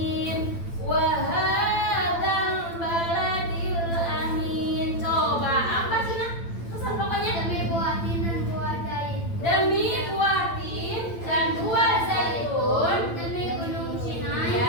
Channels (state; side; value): late; right; 8.9 ms